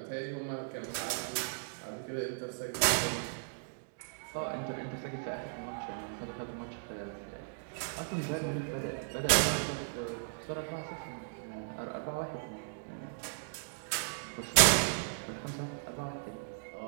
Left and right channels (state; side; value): silent; left; digital silence